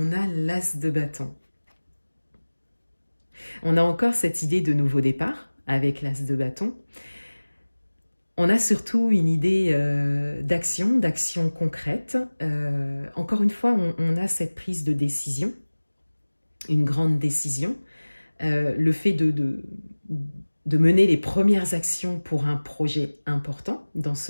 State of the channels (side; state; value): both; inverted; correlation -1.00